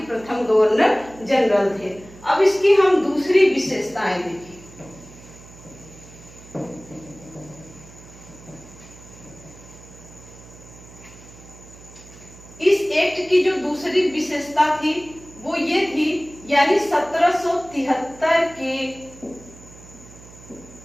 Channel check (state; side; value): noise; right; hum, 20 dB below the sound